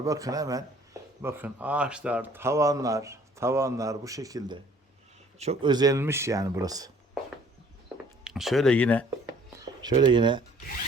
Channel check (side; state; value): both; normal; correlation 0.56